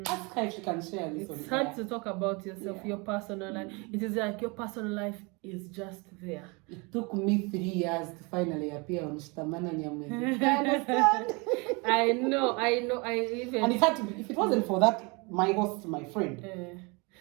Ask her if she can share this. It's hard to talk about yourself, your personal life. It is like your personal life is just there. It took me 3 years to finally appear on Shtamana Nyamwezi. I understand. I know. And it had to be, if it wasn't for that, my host, my friend.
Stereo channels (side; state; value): left; quieter; 29.0 dB